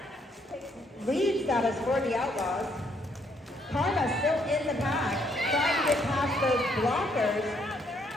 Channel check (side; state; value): both; normal; correlation 0.70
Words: lead status for the Outlaws. Karma still in the pack, trying to get past those blockers.